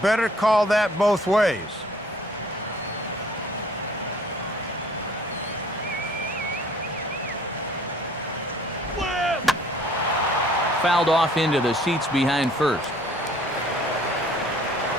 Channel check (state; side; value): normal; both; correlation 0.56